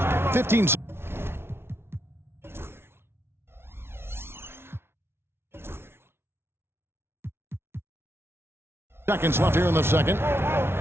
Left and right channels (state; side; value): late; left; 0.12 ms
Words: 15 seconds left here in the second.